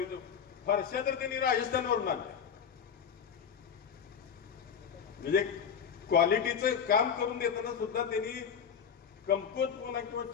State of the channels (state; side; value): quieter; right; 7.3 dB